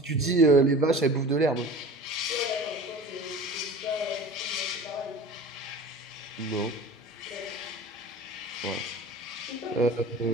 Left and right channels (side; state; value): both; normal; correlation 0.39